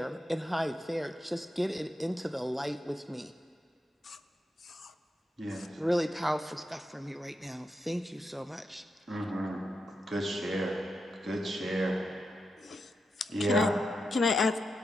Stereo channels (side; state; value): both; normal; correlation 0.87